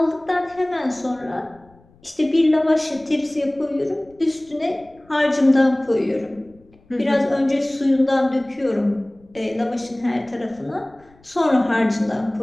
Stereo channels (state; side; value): noise; left; rumble, 29 dB below the sound